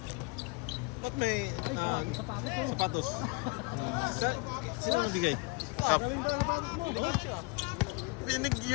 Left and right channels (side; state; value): right; quieter; 27.7 dB